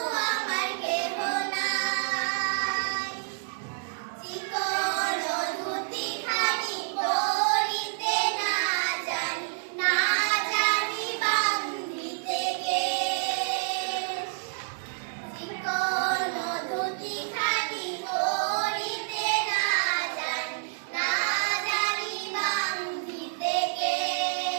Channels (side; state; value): left; silent; digital silence